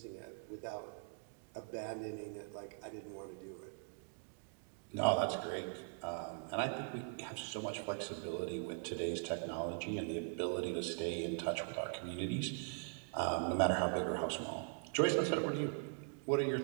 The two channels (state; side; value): silent; left; 50 dB below the other